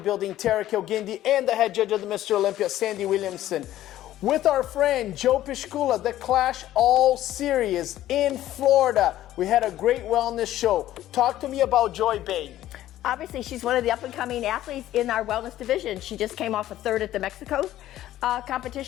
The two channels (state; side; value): quieter; right; 13.6 dB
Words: Terrick El Guindy and the head judge of the Mr. Olympia, Sandy Williamson. With our friend Joe Piscula, the Clash All Series in Florida. We had a great wellness show. Talk to me about Joy Bay. Obviously, she's one of the up-and-coming athletes in our wellness division. She just came off a third at the Mexico